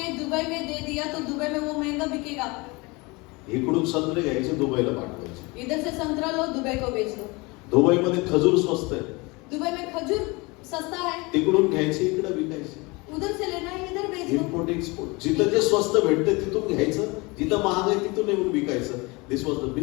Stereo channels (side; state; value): right; quieter; 25.6 dB